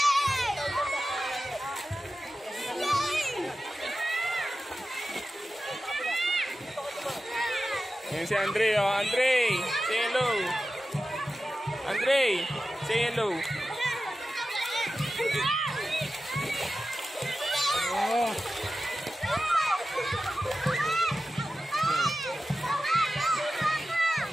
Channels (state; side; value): normal; both; correlation 0.93